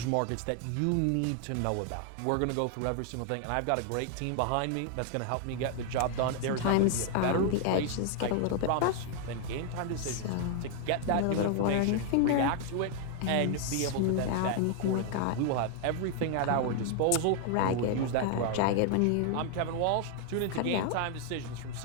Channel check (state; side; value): different; both; correlation 0.00